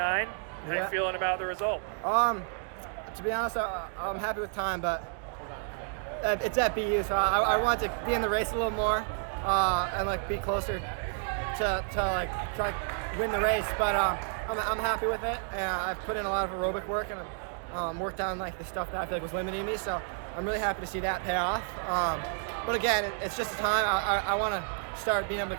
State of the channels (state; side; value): silent; left; 56 dB below the other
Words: How you feeling about the result? To be honest, I'm happy with time, but it's at BU, so I want to be in the race a little more and like be closer to like try to win the race. But I'm happy with it, and I've put in a lot of aerobic work and worked on like the stuff that I feel like was limiting me. So I'm really happy to see that pay off. But again, it's just a time. I want to start being able to